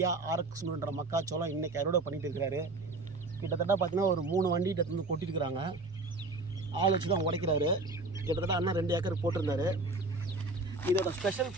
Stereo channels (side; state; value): left; quieter; 3.1 dB